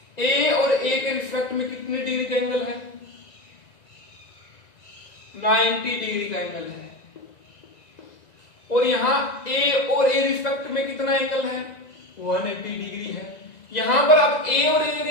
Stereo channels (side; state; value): right; late; 1.9 ms